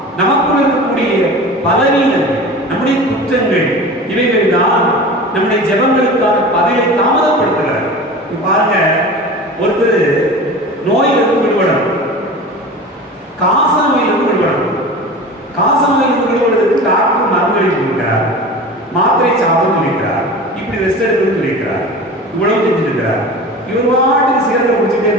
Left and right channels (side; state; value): both; normal; correlation 0.34